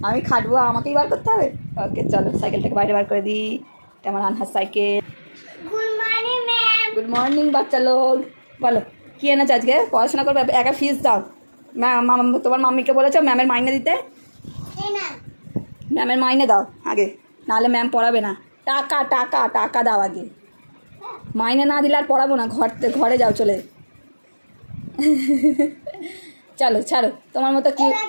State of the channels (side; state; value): both; inverted; correlation -1.00